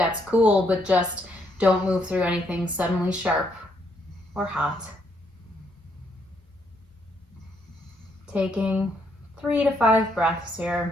cool, but just don't move through anything suddenly sharp or hot. Taking 3 to 5 breaths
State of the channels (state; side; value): normal; both; correlation 0.73